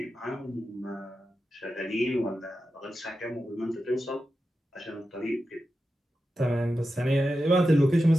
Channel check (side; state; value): both; normal; correlation 0.91